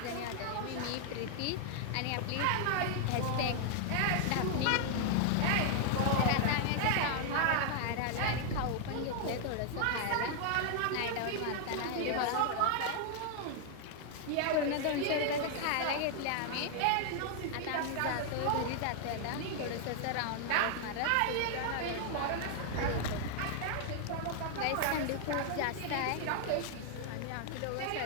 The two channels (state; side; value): different; both; correlation 0.00